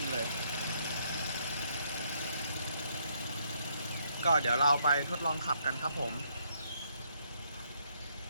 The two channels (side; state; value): both; inverted; correlation -0.71